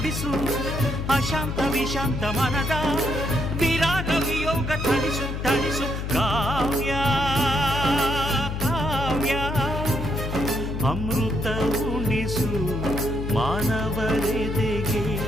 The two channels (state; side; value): noise; left; hum, 4 dB below the sound